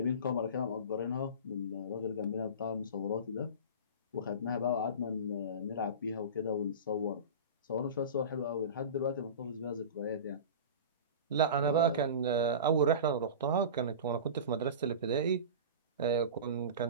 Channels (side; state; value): both; inverted; correlation -0.31